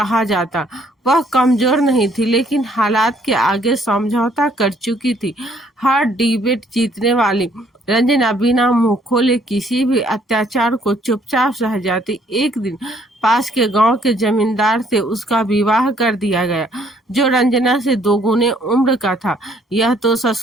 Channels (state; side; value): normal; both; correlation 0.64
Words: जाता। वह कमजोर नहीं थी, लेकिन हालात के आगे समझौता कर चुकी थी। हर डिबेट जीतने वाली रंजना बिना मुंह खोले किसी भी अत्याचार को चुपचाप सह जाती। एक दिन पास के गांव के जमींदार से उसका विवाह कर दिया गया, जो रंजना से 2 गुने उम्र का था। यह तो